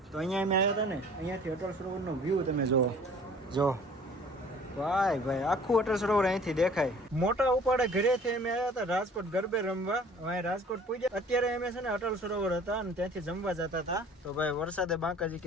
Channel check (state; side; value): normal; both; correlation 0.50